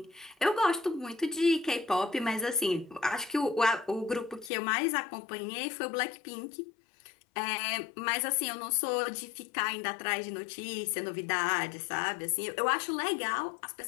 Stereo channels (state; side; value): drops out; right; at 4.5 s